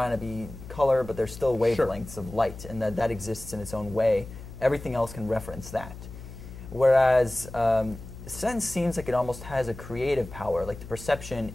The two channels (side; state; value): left; noise; hum, 13 dB below the sound